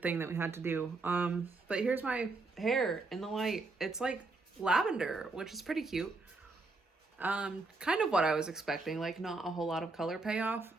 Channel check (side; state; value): left; quieter; 3.6 dB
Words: that we had to do. But here's my hair in the light. It's like lavender, which is pretty cute. Kind of what I was expecting, like not a whole lot of color payoff,